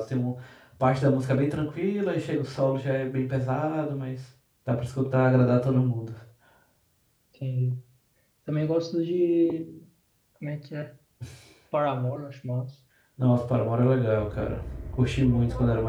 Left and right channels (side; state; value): both; identical; correlation 1.00